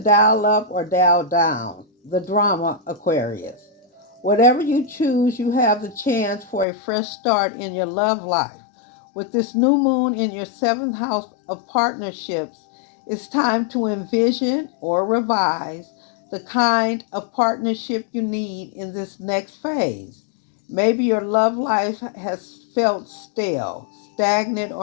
up or dial down? The drama, Aquarius. Whatever you choose, you have the chance for a fresh start in your love life. With this new moon in your seventh house of partnerships, it's time to envision or revise the kind of partnership you need in this next phase. Maybe your love life has felt stale, stagnant,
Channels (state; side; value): drops out; right; at 6.7 s